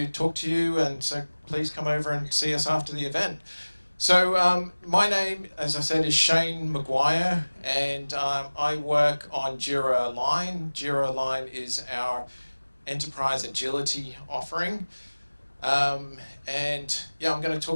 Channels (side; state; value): both; inverted; correlation -1.00